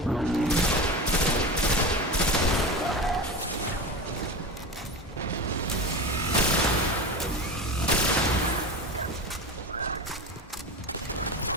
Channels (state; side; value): normal; both; correlation 0.26